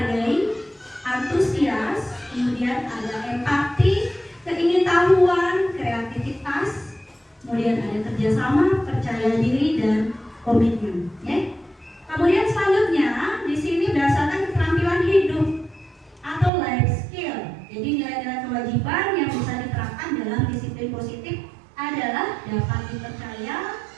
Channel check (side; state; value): left; drops out; at 16.5 s